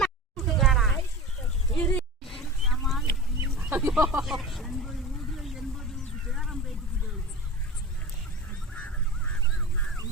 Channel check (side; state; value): both; normal; correlation 0.31